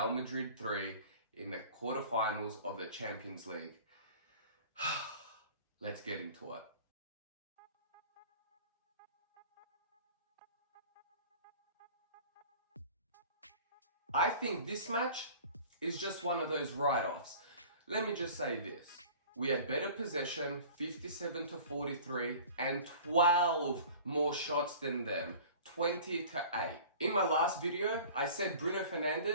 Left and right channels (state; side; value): inverted; both; correlation -0.43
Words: Madrid 3 in the quarterfinals of the Champions League. Let's get into it. I think this match is just one of those write-offs. Let me just say this. We had better possession, 57-43, and 12 more shots than them, 20-8. In my last video, I said Bruno